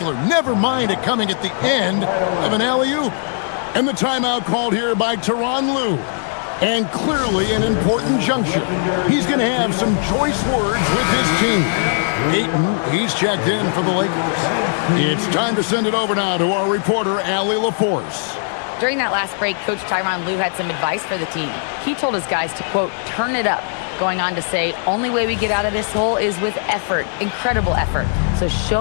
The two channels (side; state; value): right; silent; 63 dB below the other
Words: Never mind it coming at the end of an alley-oop. And the timeout called here by Tyronn Lue. And clearly an important juncture. He's going to have some choice words with his team. Ayton, he's checked in for the Lakers. It's time to send it over now to our reporter, Allie LaForce. During that last break, Coach Tyronn Lue had some advice for the team. He told his guys to, quote, turn it up, going on to say, only way we get out of this hole is with effort, incredible effort. So